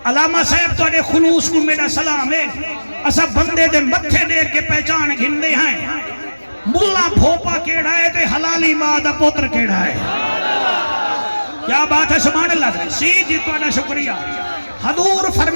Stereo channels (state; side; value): inverted; both; correlation -1.00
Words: علامہ صاحب تو اڑے خلوص کو میرا سلام ہے اسا بندے دے متھے دیکھ کے پہچان گھندے ہیں ملا بھوپا کیڑا ہے تے حلالی ماں دا پوتر کیڑا ہے کیا بات ہے سبحان اللہ سی جی تو اڑا شکریہ حضور